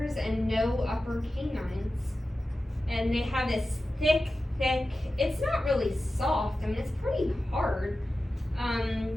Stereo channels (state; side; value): normal; both; correlation 0.93